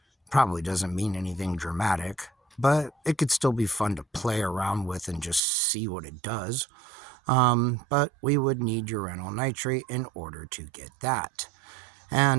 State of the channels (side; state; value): left; drops out; at 5.4 s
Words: Probably doesn't mean anything dramatic, but it could still be fun to play around with and just see what it does. But we would need uranyl nitrate in order to get that.